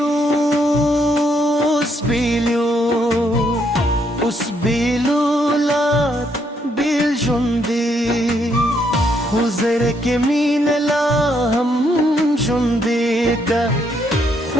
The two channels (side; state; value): both; normal; correlation 0.73